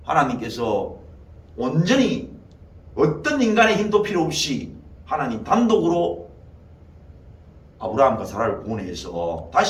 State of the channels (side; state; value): both; identical; correlation 1.00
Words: 하나님께서 온전히 어떤 인간의 힘도 필요 없이 하나님 단독으로 아브라함과 사라를 구원해서